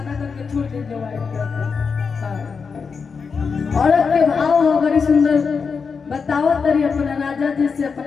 करके छोड़ दीजिए व्हाइट करके। औरत के भाव हो बड़ी सुंदर बताओ तरी अपना राजा जी से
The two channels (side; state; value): right; quieter; 5.5 dB